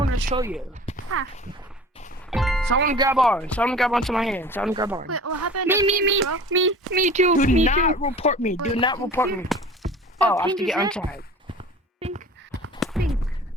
to show you. Ah. Someone grab onto my hand. Someone grab on. Wait, what happened? Me too. Do not report me. Do Wait, not report me. Oh, Oh, I have Pink to is get it? untagged.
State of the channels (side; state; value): both; normal; correlation 0.41